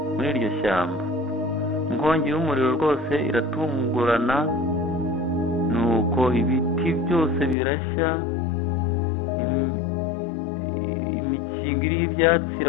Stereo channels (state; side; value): drops out; right; at 7.6 s